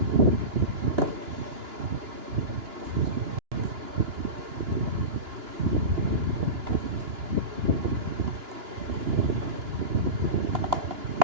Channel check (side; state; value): left; late; 2.9 ms